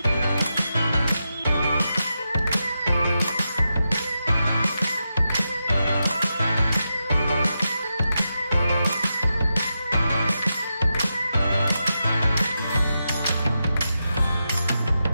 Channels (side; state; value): both; inverted; correlation -0.88